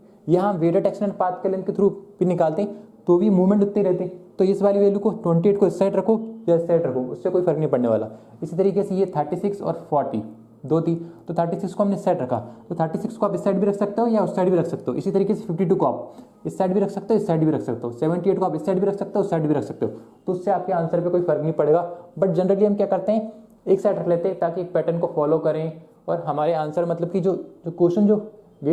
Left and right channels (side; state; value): both; identical; correlation 1.00